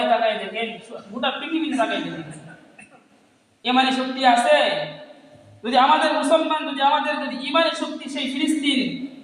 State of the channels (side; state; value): both; identical; correlation 1.00